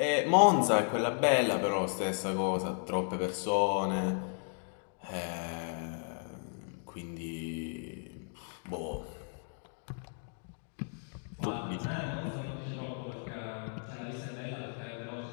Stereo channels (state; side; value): silent; right; 55 dB below the other